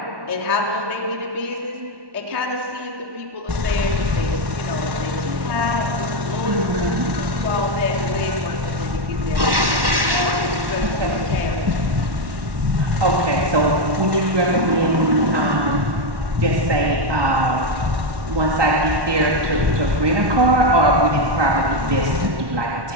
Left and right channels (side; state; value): left; late; 1.1 ms